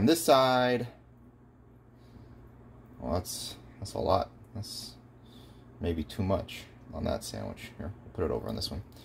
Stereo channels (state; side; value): identical; both; correlation 1.00